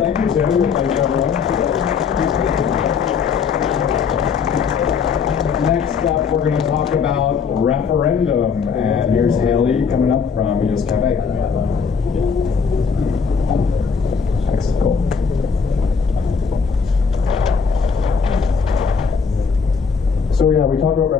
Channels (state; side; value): quieter; right; 5.9 dB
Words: you, Tim. Thank you, everyone. Next up, we're going to talk about referendum. And here's Haley coming up from EOS Cafe. Excellent. Cool. So yeah, we talked about